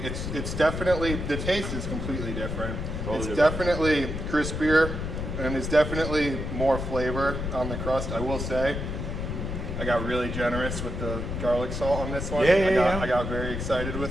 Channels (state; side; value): noise; left; rumble, 4 dB below the sound